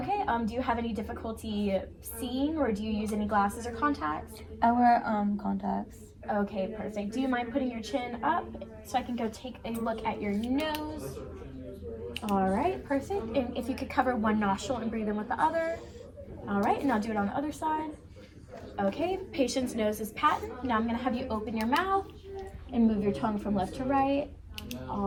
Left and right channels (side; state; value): both; identical; correlation 1.00